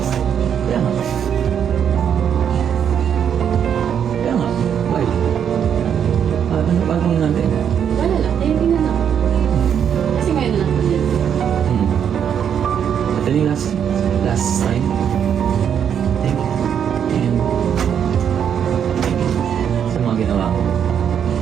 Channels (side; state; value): left; quieter; 8.4 dB